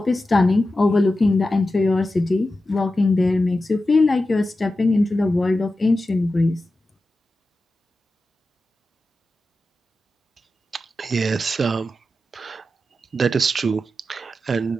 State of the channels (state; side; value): normal; both; correlation 0.92